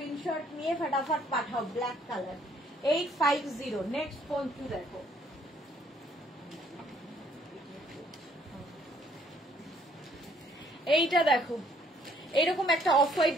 নিয়ে ফটাফট পাঠাও। Black colour 850। নেক্সট পঞ্চু দেখো, এইটা দেখো। এইরকম একটা অফ হোয়াইট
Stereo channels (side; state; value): both; normal; correlation 0.64